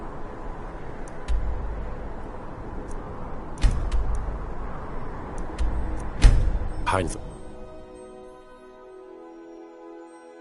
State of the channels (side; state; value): both; identical; correlation 1.00